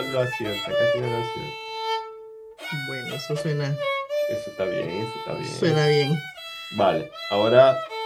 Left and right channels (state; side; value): identical; both; correlation 1.00